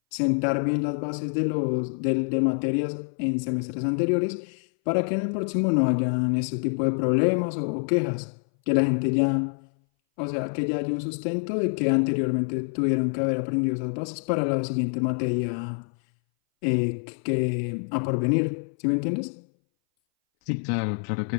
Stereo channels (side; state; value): right; silent; 59 dB below the other